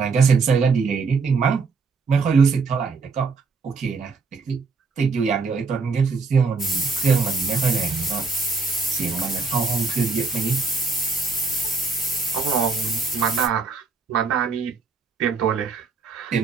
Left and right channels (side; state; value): left; quieter; 4.6 dB